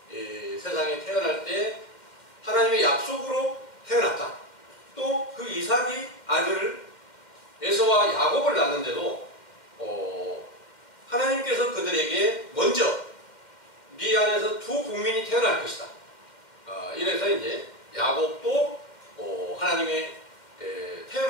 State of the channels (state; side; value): late; right; 2.1 ms